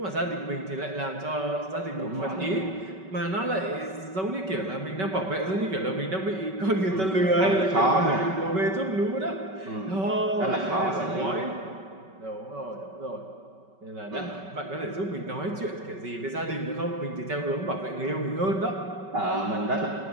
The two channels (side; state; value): left; late; 5.3 ms